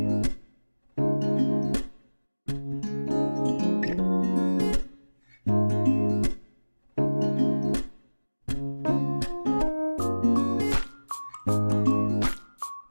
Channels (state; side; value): inverted; both; correlation -1.00